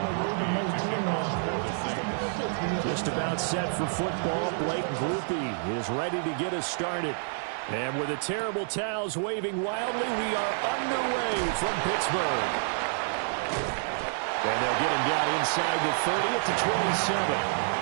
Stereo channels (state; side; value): silent; left; digital silence